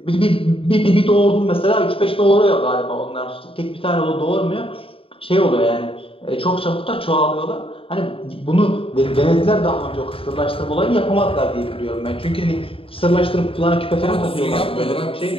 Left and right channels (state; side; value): late; right; 0.27 ms